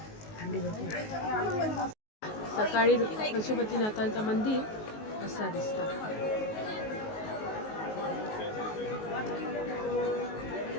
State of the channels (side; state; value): right; late; 19 ms